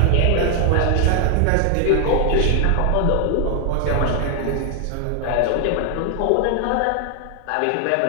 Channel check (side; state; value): both; different; correlation 0.00